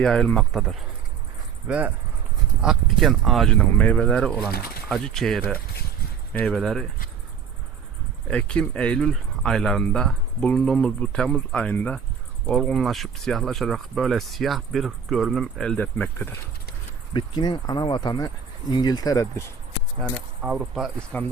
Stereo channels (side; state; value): left; quieter; 7.0 dB